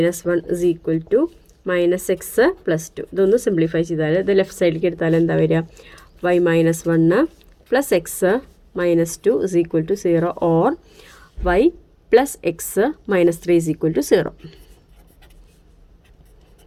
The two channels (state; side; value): identical; both; correlation 1.00